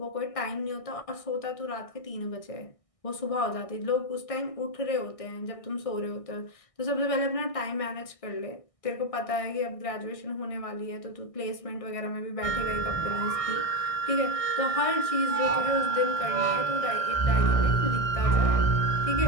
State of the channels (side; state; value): right; late; 1.6 ms